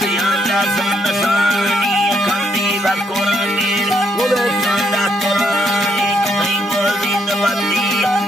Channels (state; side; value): normal; both; correlation 0.73